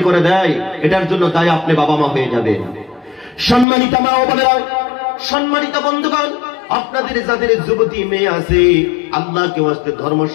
করে দেয়, এটার জন্য তাই আপনি বাবা মা হয়ে যাবেন। সম্মানিত মা ও বোনেরা, সম্মানিত বন্ধুগণ, আপনাদের যাদের যুবতী মেয়ে আছে, আল্লাহকে ওয়াস্তে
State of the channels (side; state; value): right; drops out; at 3.7 s